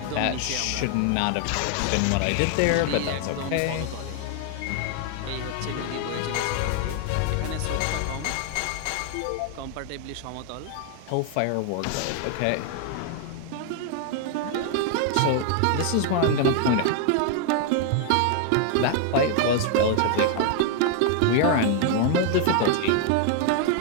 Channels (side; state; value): both; different; correlation 0.00